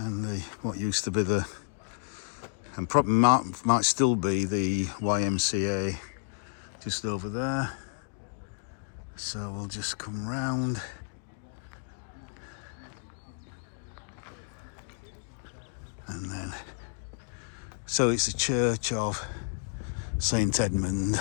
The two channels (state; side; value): silent; right; digital silence